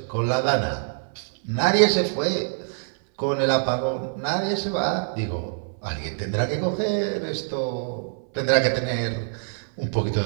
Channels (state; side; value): silent; left; 62 dB below the other